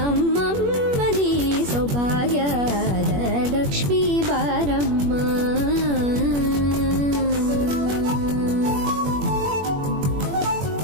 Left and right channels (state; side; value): late; left; 21 ms